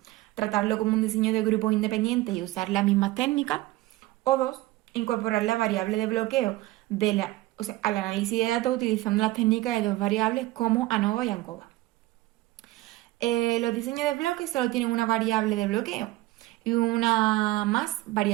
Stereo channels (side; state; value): left; quieter; 17.8 dB